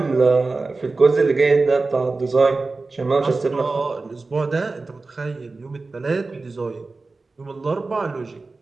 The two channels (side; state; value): left; quieter; 3.7 dB